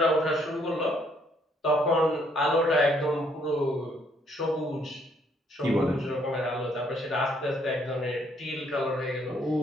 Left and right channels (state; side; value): normal; both; correlation 0.68